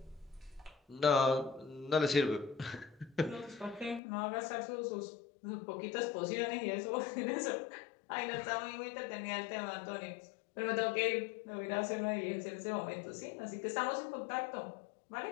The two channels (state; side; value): drops out; right; at 4.0 s